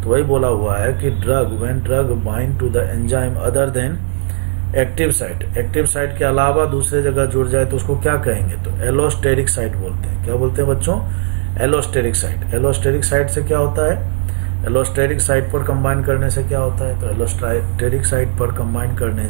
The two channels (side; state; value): left; silent; 69 dB below the other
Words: तो वही बोला हुआ है कि when drug bind to the enzyme other than active site के अलावा दूसरे जगह जुड़ जाए तो उसको क्या कहेंगे, तो एलोस्टेरिक साइट बोलते हैं। क्या बोलते हैं बच्चों, एलोस्टेरिक साइट। एलोस्टेरिक साइट से क्या होता है, एलोस्टेरिक साइट पर कंबाइन करने से क्या होता है, तो एलोस्टेरिक साइट पर कंबाइन करने